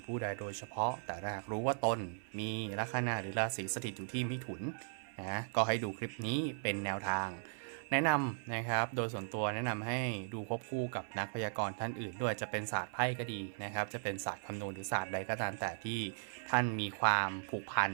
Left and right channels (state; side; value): silent; left; 53 dB below the other